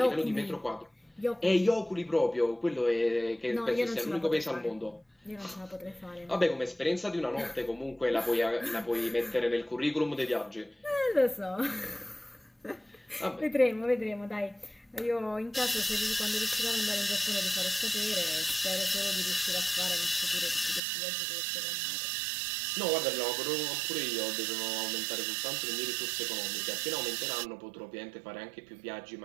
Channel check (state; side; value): drops out; left; at 20.8 s